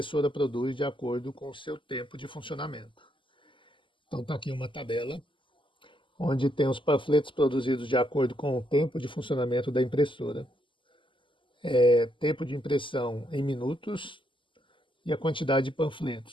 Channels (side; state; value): right; late; 0.25 ms